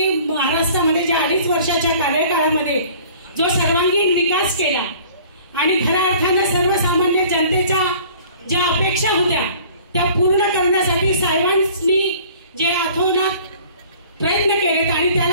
महाराष्ट्रामध्ये ज्या 2.5 वर्षाच्या कार्यकाळामध्ये जो सर्वांगीण विकास केला आणि खऱ्या अर्थानं सर्वसामान्य जनतेच्या ज्या अपेक्षा होत्या त्या पूर्ण करण्यासाठी साहेबांनी जे अथोनात प्रयत्न केलेत आणि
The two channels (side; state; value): both; inverted; correlation -0.50